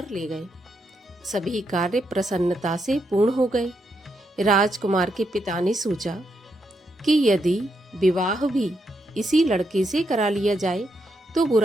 ले गए। सभी कार्य प्रसन्नता से पूर्ण हो गए। राजकुमार के पिता ने सोचा कि यदि विवाह भी इसी लड़के से करा लिया जाए तो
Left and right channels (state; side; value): normal; both; correlation 0.80